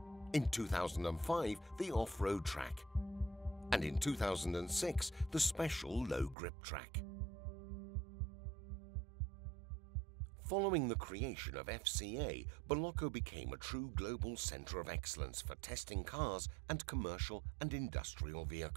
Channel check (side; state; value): left; drops out; at 6.4 s